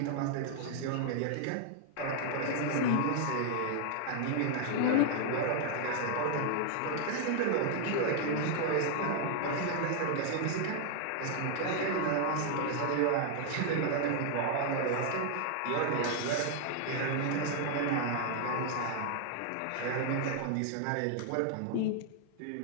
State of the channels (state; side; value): different; both; correlation 0.00